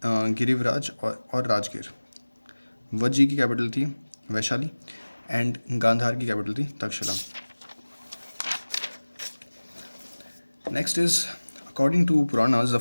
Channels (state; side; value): inverted; both; correlation -1.00